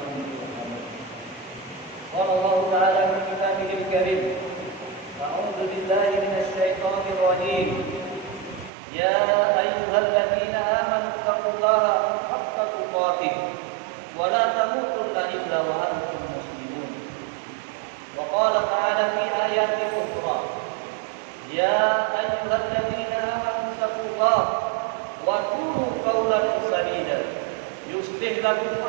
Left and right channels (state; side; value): drops out; left; at 8.7 s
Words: ترحمون. قال الله تعالى في كتابه الكريم: أعوذ بالله من الشيطان الرجيم. يا أيها الذين آمنوا اتقوا الله حق تقاته ولا تموتن إلا وأنتم مسلمون. وقال تعالى في آيات أخرى: يا أيها الذين آمنوا اتقوا الله وقولوا قولا سديدا يصلح لكم